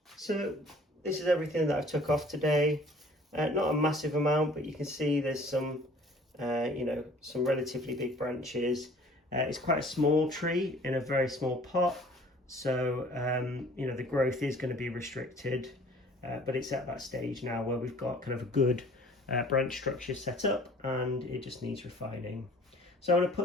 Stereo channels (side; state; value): both; normal; correlation 0.52